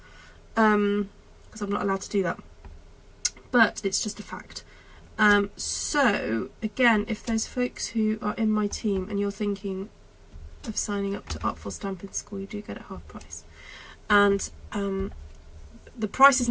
Because I'm not allowed to do that. But it's just a fact. So, again, if there's folks who are in my team and you're thinking of signing up to Artful Stampin School, you do get it half price. And the price is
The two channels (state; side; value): identical; both; correlation 1.00